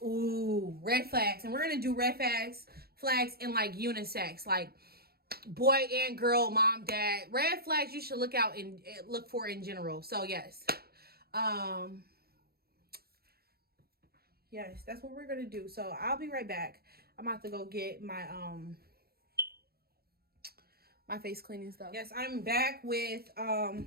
Ooh, red flags. And we're going to do red flags in like unisex, like boy and girl, mom, dad. Red flags you should look for in general. So yes. Yes, that's what we're going to do. So I'll be right back. I'm about to go get my my face cleaning stuff. Yes, I'm back with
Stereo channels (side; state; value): left; late; 0.45 ms